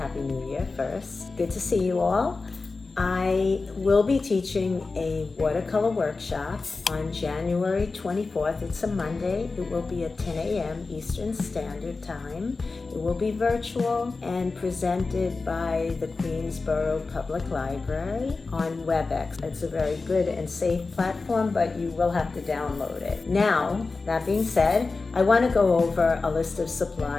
New Year first. Good to see you all. I will be teaching a watercolor workshop on January 24th. It's a Monday. It will be at 10 a.m. Eastern Standard Time. It will be virtual and presented by the Queensborough Public Library on WebEx. It's a very good and safe platform, but you will have to download it. Now, that being said, I want to go over a list of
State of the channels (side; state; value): right; quieter; 3.9 dB